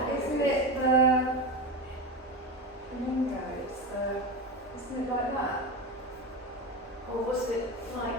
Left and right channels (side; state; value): both; normal; correlation 0.20